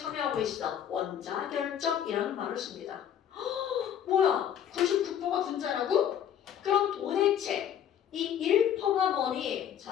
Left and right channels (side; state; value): right; quieter; 9.5 dB